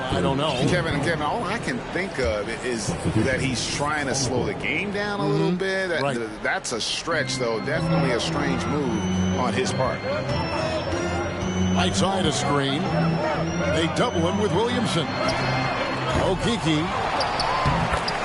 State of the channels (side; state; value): both; identical; correlation 1.00